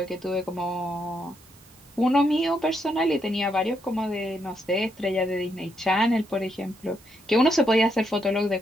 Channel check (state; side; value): noise; right; hiss, 26 dB below the sound